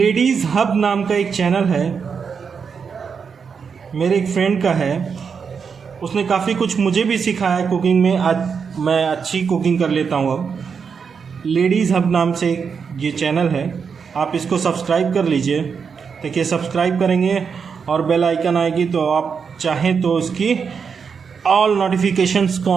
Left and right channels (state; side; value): quieter; left; 6.1 dB